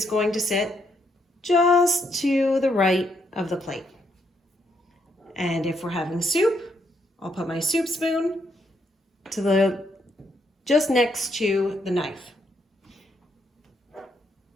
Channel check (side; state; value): both; normal; correlation 0.75